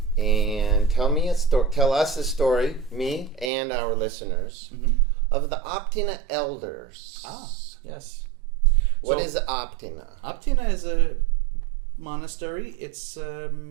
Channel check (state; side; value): drops out; left; at 3.5 s